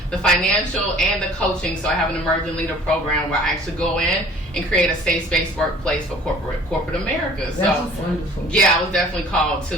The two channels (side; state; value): both; normal; correlation 0.50